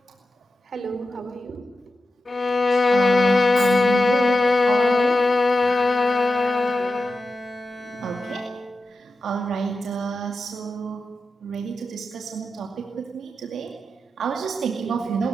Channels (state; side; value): normal; both; correlation 0.91